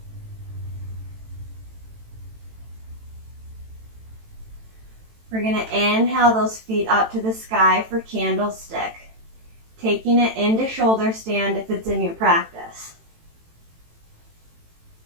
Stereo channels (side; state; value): left; late; 18 ms